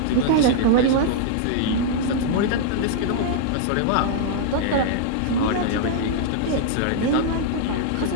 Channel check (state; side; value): different; both; correlation -0.01